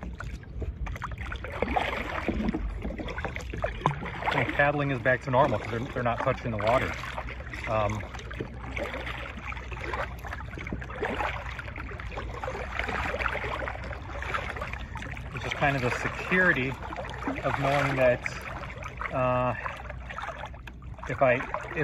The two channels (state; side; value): identical; both; correlation 1.00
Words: paddling is back to normal because they're not touching the water. It's just kind of the security of knowing that